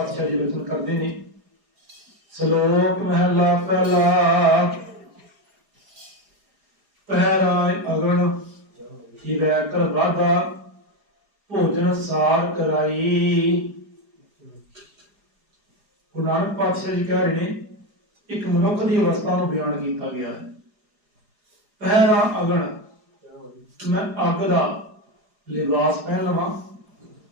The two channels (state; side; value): late; left; 4.8 ms